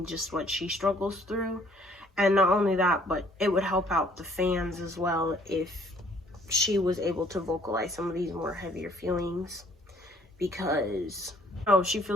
just what she struggles through. And not only that, but it would help out the fans as well if she was able to vocalize some of these more heavier feelings, because she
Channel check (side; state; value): both; normal; correlation 0.60